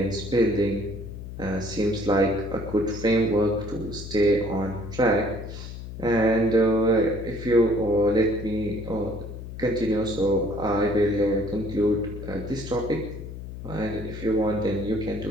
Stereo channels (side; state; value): left; noise; hum, 10 dB below the sound